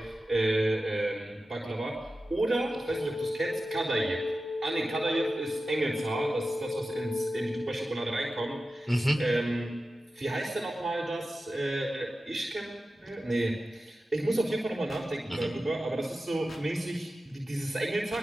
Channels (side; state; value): both; normal; correlation 0.94